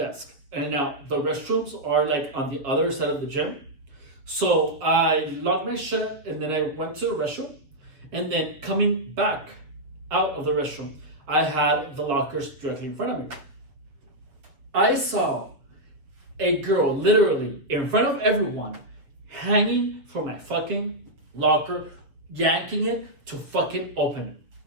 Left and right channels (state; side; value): late; left; 7.1 ms